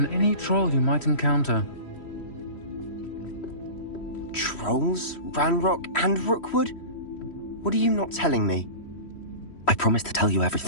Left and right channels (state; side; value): late; right; 3.1 ms